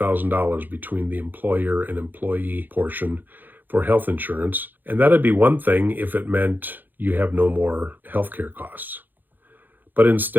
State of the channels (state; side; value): late; left; 0.088 ms